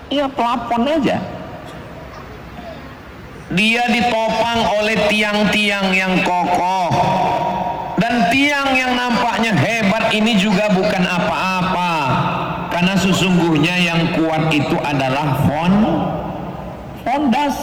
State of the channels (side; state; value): both; identical; correlation 1.00